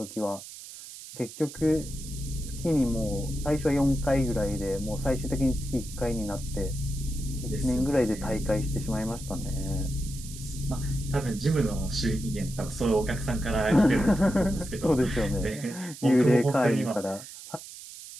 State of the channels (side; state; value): right; noise; hiss, 14 dB below the sound